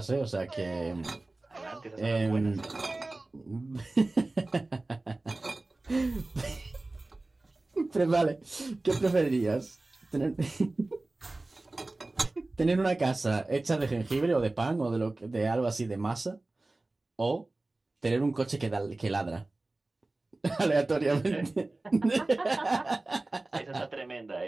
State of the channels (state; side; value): quieter; left; 3.0 dB